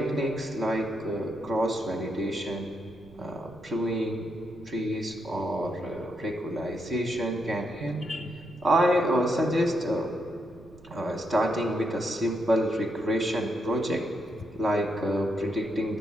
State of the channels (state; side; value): noise; right; rumble, 23 dB below the sound